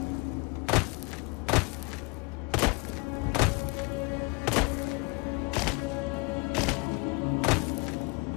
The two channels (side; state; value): right; quieter; 28.7 dB